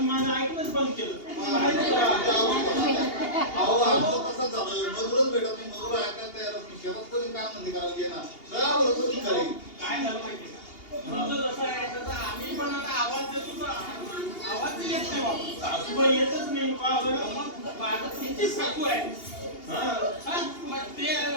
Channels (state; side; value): late; right; 2.8 ms